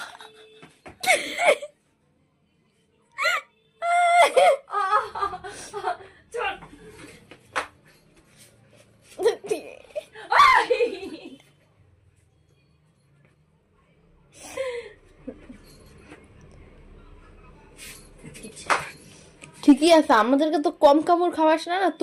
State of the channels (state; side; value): identical; both; correlation 1.00